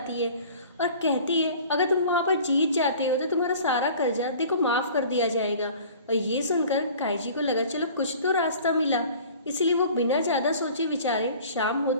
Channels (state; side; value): inverted; both; correlation -0.46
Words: है और कहती है अगर तुम वहाँ पर जीत जाते हो तो तुम्हारा सारा कर्जा देखो माफ कर दिया जाएगा। और ये सुनकर काइची को लगा चलो कुछ तो रास्ता मिला, इसलिए वो बिना ज्यादा सोचे विचारे शाम